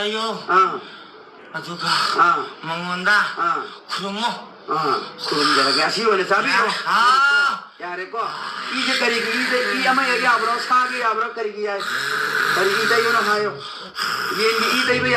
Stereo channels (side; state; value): both; identical; correlation 1.00